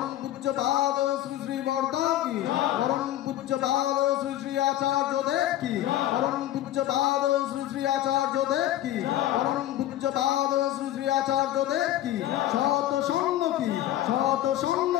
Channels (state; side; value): quieter; right; 13.7 dB